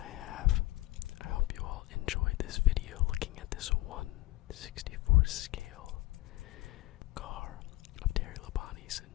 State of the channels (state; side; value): quieter; right; 19.0 dB